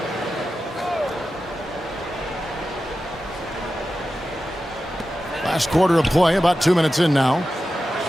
Last quarter of play, about 2 minutes in now.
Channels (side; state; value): both; normal; correlation 0.92